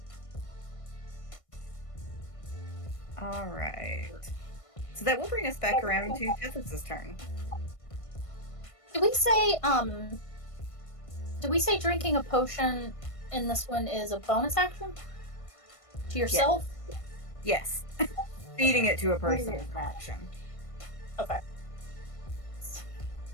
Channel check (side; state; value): right; late; 1.5 ms